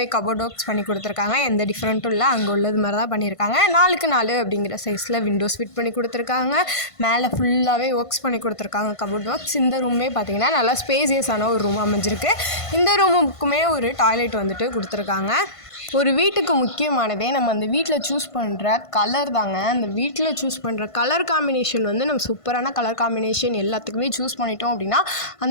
கபோர்ட் ஒர்க்ஸ் பண்ணி கொடுத்துருக்காங்க. எந்த டிஃப்ரெண்ட்டும் இல்லை, அங்கே உள்ளது மாதிரி தான் பண்ணியிருக்காங்க. 4x 4 அப்படிங்கிற சைஸில் விண்டோஸ் ஃபிட் பண்ணி கொடுத்துருக்காங்க. மேலே ஃபுல்லாகவே ஒர்க்ஸ் பண்ணி கொடுத்துருக்காங்க கபோர்ட் ஒர்க்ஸ். இந்த ரூமே பார்த்திங்கன்னா நல்லா ஸ்பேசியஸான ஒரு ரூம் அமைஞ்சிருக்கு. இந்த ரூமுக்குமே ஒரு டாய்லெட் வந்துட்டு கொடுத்துருக்காங்க. ஒரு வீட்டுக்கு முக்கியமானதே நம்ம அந்த வீட்டில் சூஸ் பண்ணுற கலர் தாங்க. அந்த வீட்டில் சூஸ் பண்ணுற கலர் காம்பினேஷன் வந்து நம்ம சூப்பரான கலர் காம்பினேஷன் எல்லாத்துக்குமே சூஸ் பண்ணிட்டோம் அப்படின்னா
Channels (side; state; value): right; late; 1.5 ms